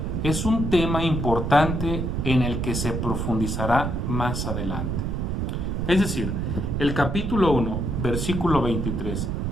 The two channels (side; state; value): right; noise; rumble, 1 dB below the sound